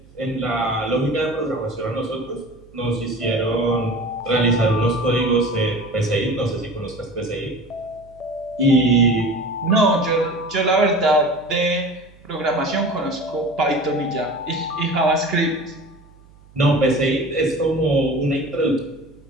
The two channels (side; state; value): right; noise; hum, 26 dB below the sound